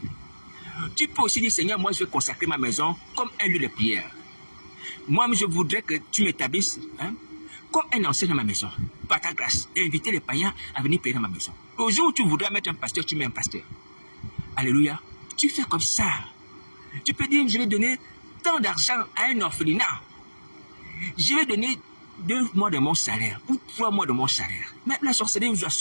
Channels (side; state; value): both; inverted; correlation -1.00